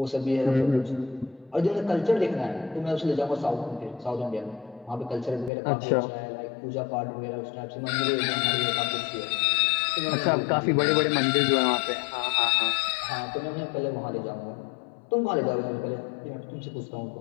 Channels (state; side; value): drops out; right; at 5.5 s